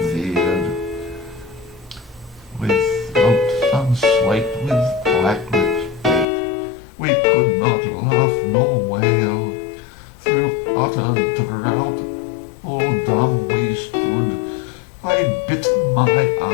veered, with throats unslaked, with black lips baked. We could not laugh nor wail. Through utter drought, all dumb we stood. I bit my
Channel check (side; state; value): right; drops out; at 6.2 s